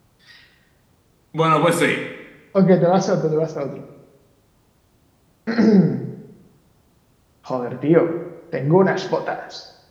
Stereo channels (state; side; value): identical; both; correlation 1.00